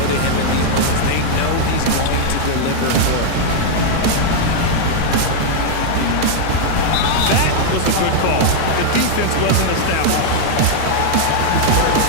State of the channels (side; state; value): both; different; correlation 0.00